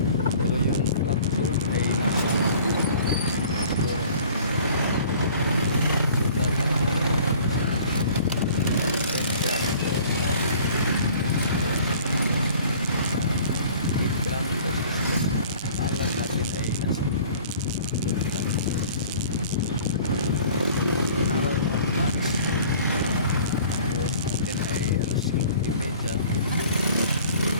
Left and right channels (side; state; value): both; inverted; correlation -0.49